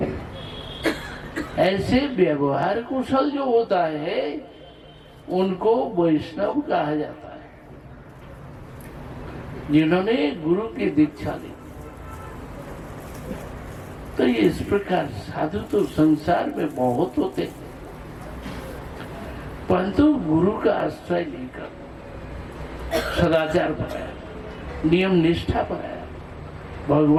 ऐसे व्यवहार कुशल जो होता है उनको वैष्णव कहा जाता है। जिन्होंने गुरु की दीक्षा ली, तो ये इस प्रकार साधु तो संसार में बहुत होते, परंतु गुरु का आश्रय लेकर सदाचार बनाया, नियम निष्ठा बनाया,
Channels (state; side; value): identical; both; correlation 1.00